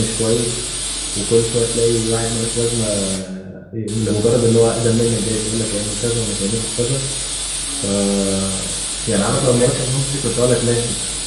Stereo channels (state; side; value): identical; both; correlation 1.00